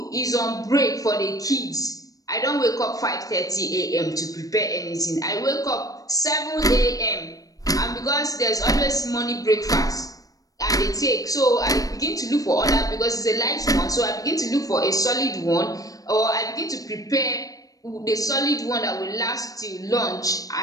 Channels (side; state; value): right; late; 0.17 ms